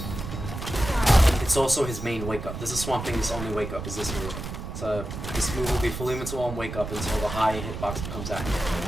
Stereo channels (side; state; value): right; noise; rumble, 7 dB below the sound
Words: it's also his main wake up. This is Swamp Thing's only wake up, is this move. So this move will be fully invincible on wake up until the high hitbox becomes active.